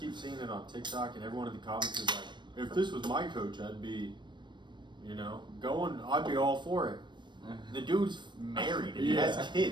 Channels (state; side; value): late; left; 0.22 ms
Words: seeing it on TikTok and everyone in the comments is like, if this was my coach, I'd be, I'd be all for it. The dude's married and he has